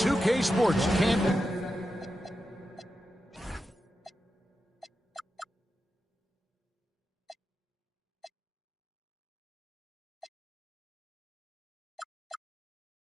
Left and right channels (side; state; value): both; normal; correlation 0.89